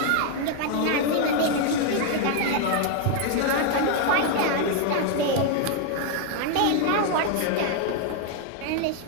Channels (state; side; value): different; both; correlation 0.01